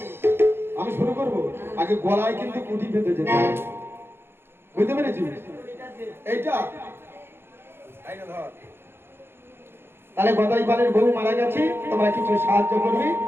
আমি শুরু করবো। আগে গলায় কিন্তু কুটি বেঁধে যেতে হবে, বুঝতে পেরেছিস? এইটা তাহলে গদাইপালের বউ মারা গেছে, তোমরা কিছু সাহায্য করবি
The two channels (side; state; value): left; late; 0.11 ms